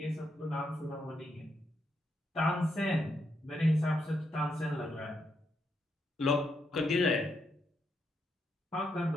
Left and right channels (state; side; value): normal; both; correlation 0.80